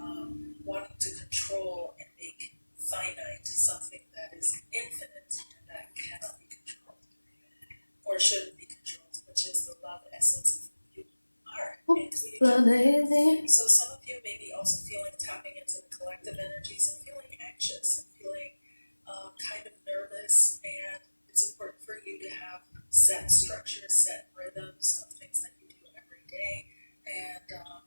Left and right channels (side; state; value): both; inverted; correlation -1.00